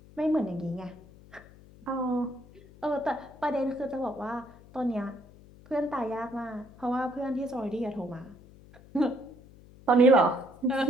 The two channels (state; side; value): noise; left; hum, 22 dB below the sound